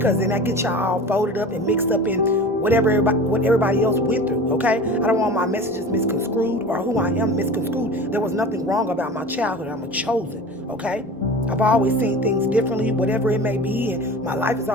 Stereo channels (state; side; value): normal; both; correlation 0.36